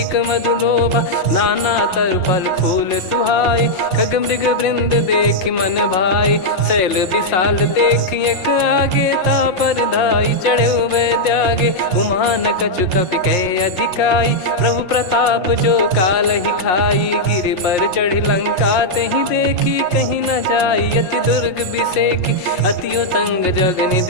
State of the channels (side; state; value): right; late; 5.6 ms